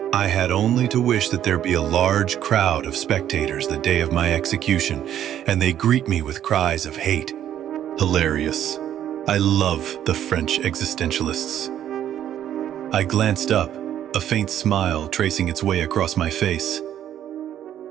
I had only to wish that there be a large crowd of spectators the day of my execution, and they greet me with cries of hate. Hilarious. I love the French existentialists. I glanced up, a faint smile tracing its way across my face.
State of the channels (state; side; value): quieter; left; 10.8 dB